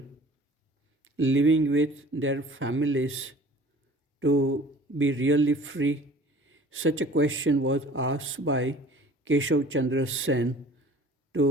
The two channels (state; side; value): normal; both; correlation 0.47